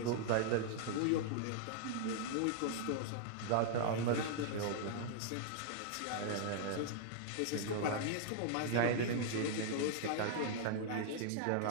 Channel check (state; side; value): different; both; correlation -0.01